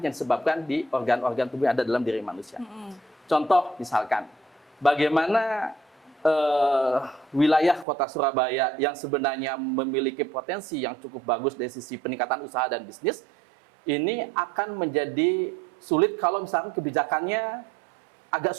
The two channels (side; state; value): left; drops out; at 7.9 s